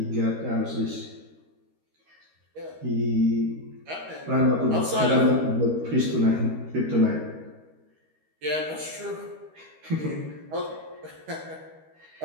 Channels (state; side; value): late; left; 13 ms